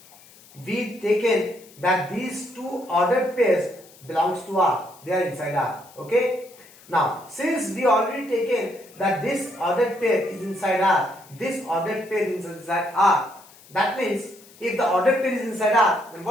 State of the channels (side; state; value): left; noise; hiss, 24 dB below the sound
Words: we taken that these 2 ordered pairs belongs to R. They are inside R. Okay. Now, since we already taken that this ordered pair is inside R, this ordered pair is inside R. That means if the ordered pair is inside R, then